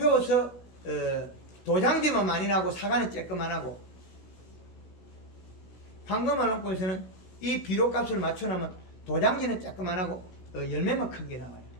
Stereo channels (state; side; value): late; right; 16 ms